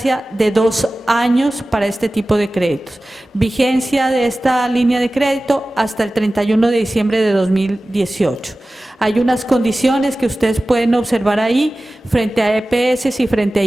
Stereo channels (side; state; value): both; normal; correlation 0.96